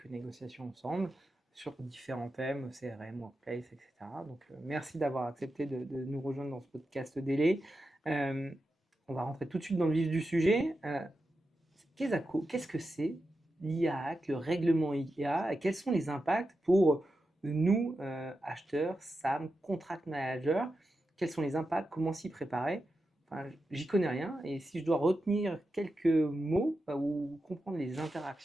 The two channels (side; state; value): both; normal; correlation 0.90